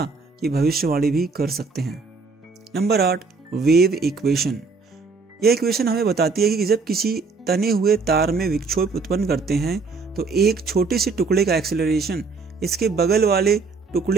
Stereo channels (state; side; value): quieter; left; 4.4 dB